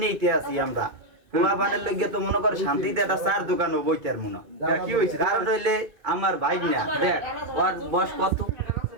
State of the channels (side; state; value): left; late; 2.5 ms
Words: আছি আমরা? পোলাপানের লইগে তো মনে কর শান্তিতে একটা চার দোকানও বইতার মনে। কি হয়েছে? কারণ হইলে আমার ভাই না, দেখ ওর বয়স কত,